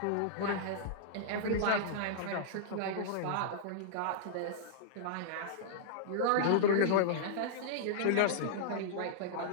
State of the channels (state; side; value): different; both; correlation -0.02